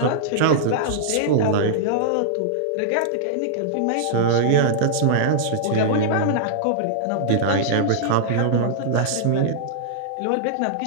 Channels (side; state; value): both; different; correlation -0.02